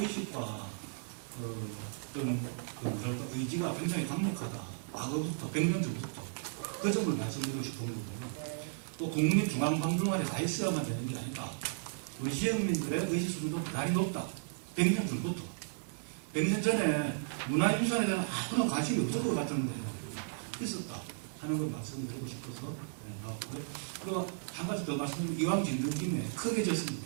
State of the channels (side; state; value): left; silent; digital silence